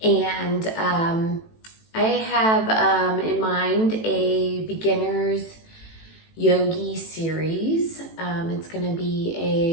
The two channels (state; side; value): late; right; 18 ms